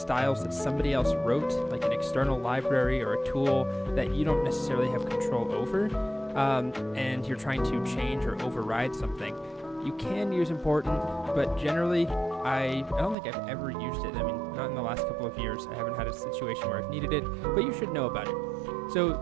that somebody else wrote, like an external library or a tool that you don't necessarily have control over, and you're trying to change or override something. You can use important, but generally, I don't think I've ever used it. I mean, not in the last couple of years. I haven't had a situation where I've needed it, but you should know about it.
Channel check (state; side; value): drops out; left; at 13.2 s